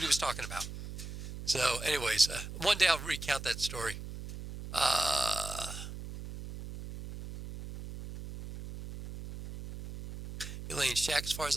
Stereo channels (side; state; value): right; noise; hum, 10 dB below the sound